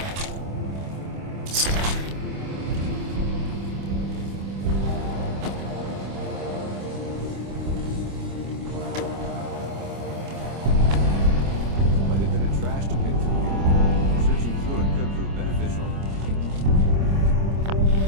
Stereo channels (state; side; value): late; left; 26 ms